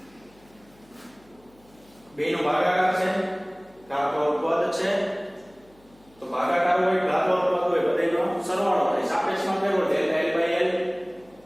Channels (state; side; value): noise; left; hum, 29 dB below the sound